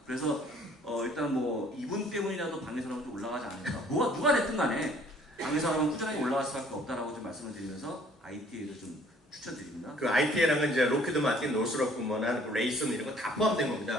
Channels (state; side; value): normal; both; correlation 0.57